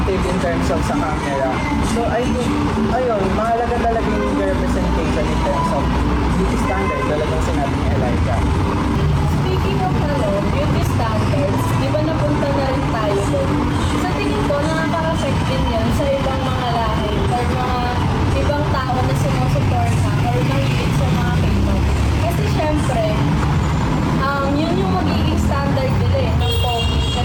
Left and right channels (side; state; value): both; identical; correlation 1.00